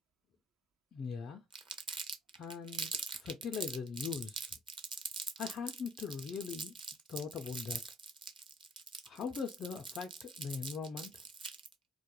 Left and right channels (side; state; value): both; normal; correlation 0.58